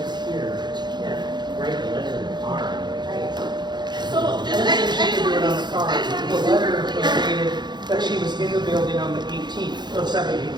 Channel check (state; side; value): late; left; 0.21 ms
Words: here, but you can't write the letter in the car. So, just, And I then just, she I just could do it wanna on be, the card. I just wanna be The super letter was clear. stated that she was in the building on the 18th, or 17th,